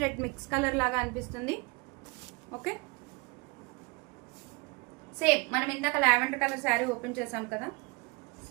రెడ్ మిక్స్ కలర్ లాగా అనిపిస్తుంది. ఓకే, సేమ్ మనం ఇందాక లావెండర్ కలర్ శారీ ఓపెన్ చేసాం కదా,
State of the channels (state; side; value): quieter; left; 27.4 dB